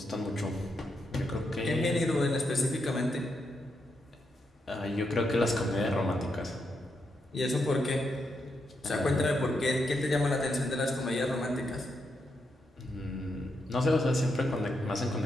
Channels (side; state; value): both; normal; correlation 0.82